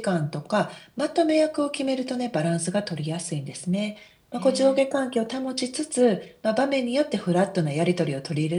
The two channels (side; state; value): both; identical; correlation 1.00